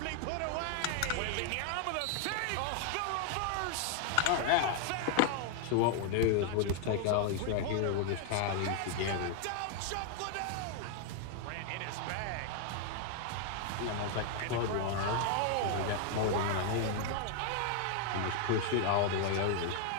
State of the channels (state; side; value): different; both; correlation 0.00